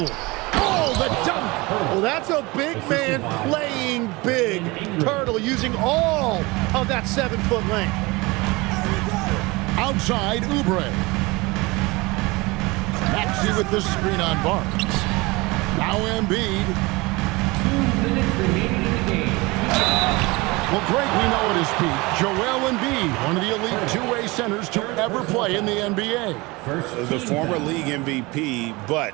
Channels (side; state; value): left; quieter; 23.7 dB